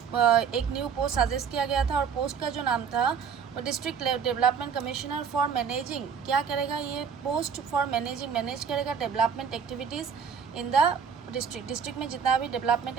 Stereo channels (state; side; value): quieter; left; 6.8 dB